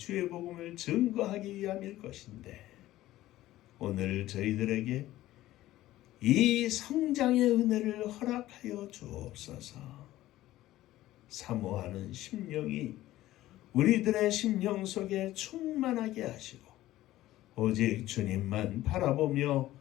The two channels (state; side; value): quieter; right; 15.4 dB